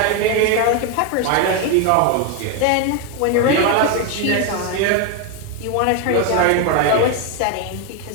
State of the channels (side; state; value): both; different; correlation 0.01